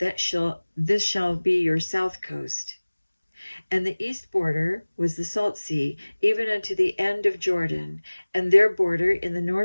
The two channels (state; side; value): inverted; both; correlation -1.00